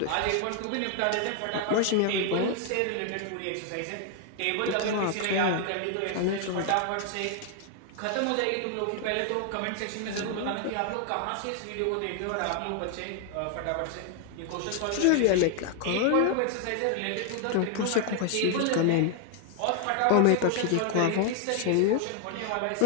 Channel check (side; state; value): both; different; correlation 0.00